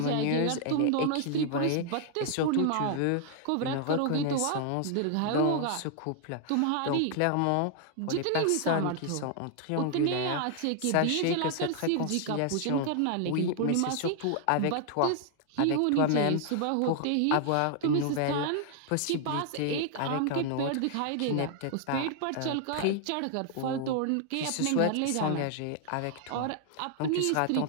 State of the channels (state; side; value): different; both; correlation 0.00